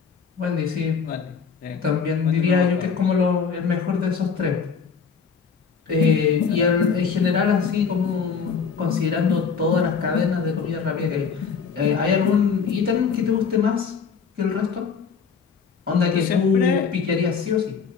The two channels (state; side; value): quieter; right; 6.0 dB